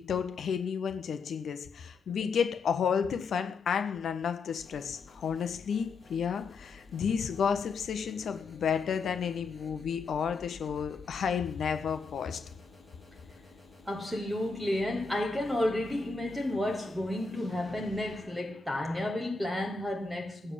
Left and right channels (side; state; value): right; quieter; 4.4 dB